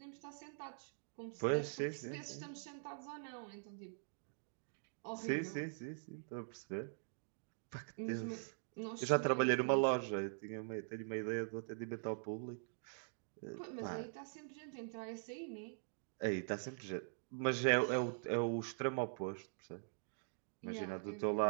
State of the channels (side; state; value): left; silent; digital silence